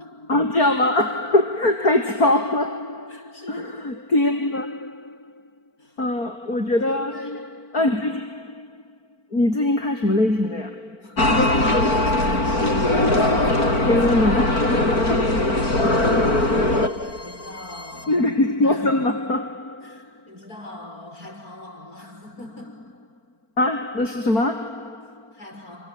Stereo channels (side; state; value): right; late; 4.4 ms